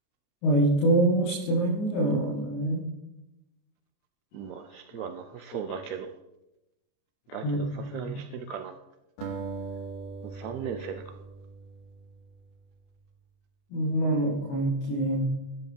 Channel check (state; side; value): late; right; 28 ms